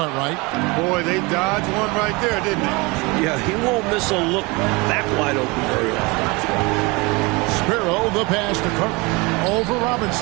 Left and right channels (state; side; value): quieter; left; 25.8 dB